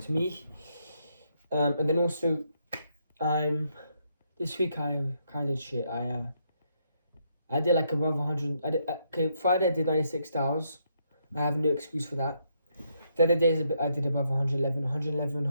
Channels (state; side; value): inverted; both; correlation -0.76